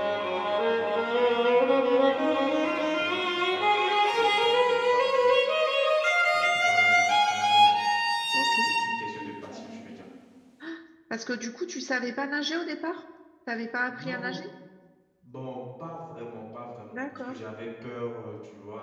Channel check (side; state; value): both; identical; correlation 1.00